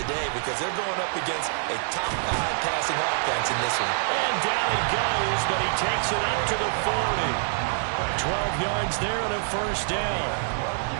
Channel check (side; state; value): left; silent; digital silence